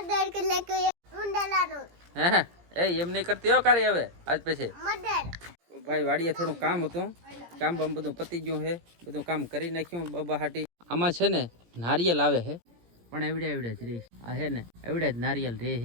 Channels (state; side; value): late; left; 17 ms